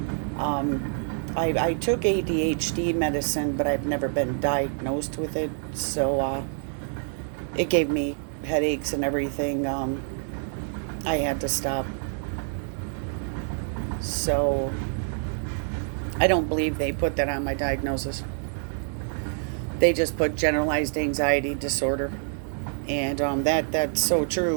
I took ADHD medicine, but I've never been diagnosed with it. So it gave me headaches and everything. I had to stop. So I don't believe they put that on my diagnosis. They just put generalized anxiety disorder. And that's so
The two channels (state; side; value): silent; left; 60 dB below the other